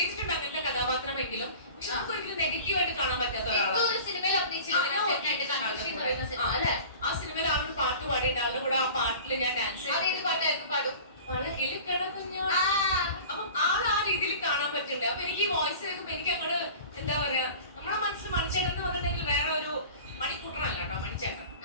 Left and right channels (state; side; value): inverted; both; correlation -0.40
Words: അങ്ങനത്തെ കഥാപാത്രമെങ്കിലും പക്ഷെ നമുക്ക് ഒരിക്കലും നെഗറ്റീവായിട്ട് കാണാൻ പറ്റാത്ത ഒരാളാണ്. ആ സിനിമയിൽ ആളുടെ പാട്ട് പാടിയിട്ട് ആളുടെ കൂടെ ആ പാട്ടിൽ ഞാൻ ഡാൻസ് പാടും. അപ്പം ആ രീതിയിൽ കാണാൻ പറ്റുന്നുണ്ട്. അപ്പൊ എനിക്ക് ഈ വോയിസ് കേൾക്കുമ്പോ എനിക്ക് അങ്ങോട്ട് എന്താ പറയാ നമ്മുടെ മനസ്സിൽ മണിച്ചേട്ടൻ എന്ന് പറഞ്ഞിട്ടുണ്ടെങ്കിൽ വേറെ ഒരു മണിക്കൂട്ടറല്ല കേട്ടോ മണിച്ചേട്ടൻ.